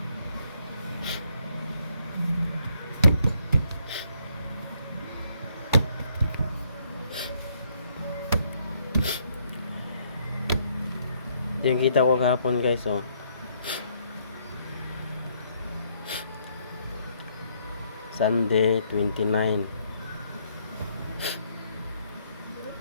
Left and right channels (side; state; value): both; inverted; correlation -0.70